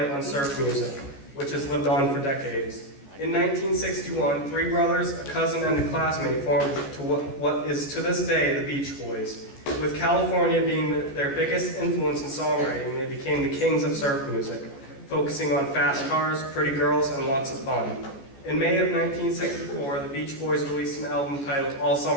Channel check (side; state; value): right; late; 14 ms